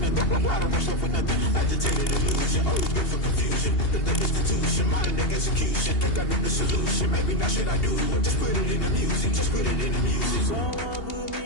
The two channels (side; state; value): right; late; 2.8 ms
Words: Why the rush left for nothing? Agitated illusion, always been for confusion. The institution, modern day execution. Think I know the solution. Maybe not should I do it? Just put it in the music. Just put it in the music. Someone put